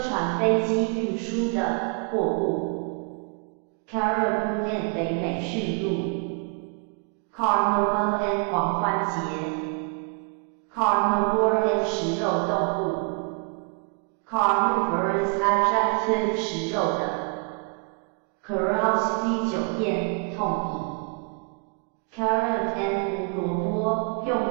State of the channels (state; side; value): quieter; left; 37.1 dB